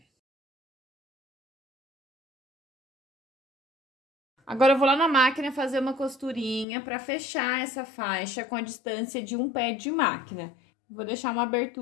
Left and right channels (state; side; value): drops out; right; at 6.7 s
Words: Agora, eu vou lá na máquina fazer uma costurinha para fechar essa faixa com a distância de um pé de máquina. Vou deixar uma